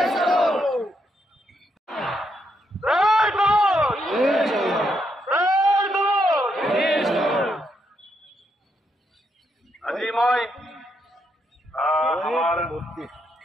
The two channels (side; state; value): both; normal; correlation 0.78